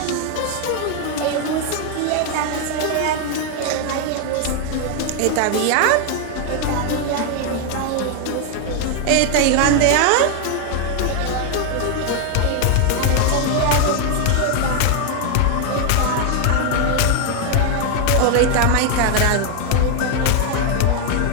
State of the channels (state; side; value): different; both; correlation 0.00